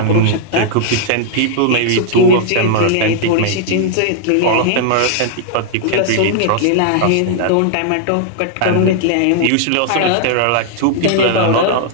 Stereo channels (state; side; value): different; both; correlation -0.01